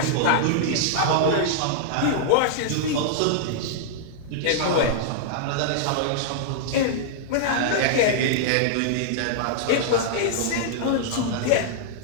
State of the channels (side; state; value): both; different; correlation -0.02